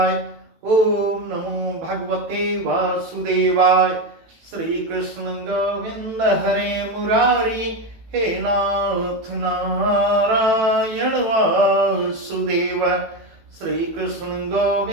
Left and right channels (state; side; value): late; left; 18 ms